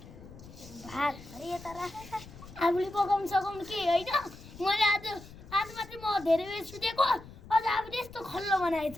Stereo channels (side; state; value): left; noise; rumble, 17 dB below the sound